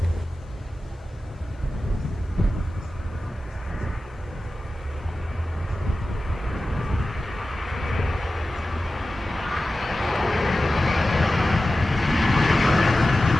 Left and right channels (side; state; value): both; normal; correlation 0.95